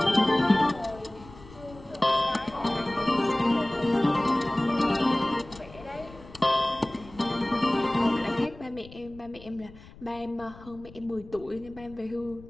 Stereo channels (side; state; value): left; noise; rumble, 20 dB below the sound